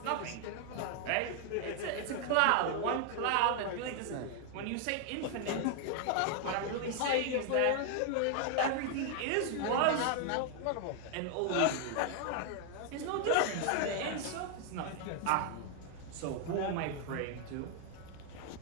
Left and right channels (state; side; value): different; both; correlation 0.00